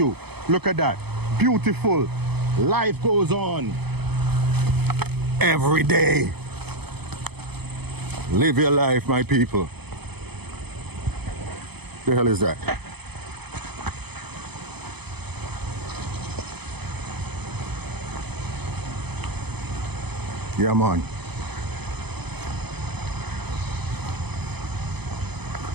Look at that. Beautiful. Life goes on. Every day. Live your life, my people. The hell is that? Yeah, man.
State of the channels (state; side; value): late; left; 0.98 ms